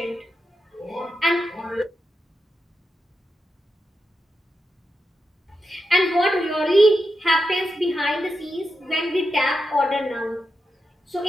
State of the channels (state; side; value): normal; both; correlation 0.88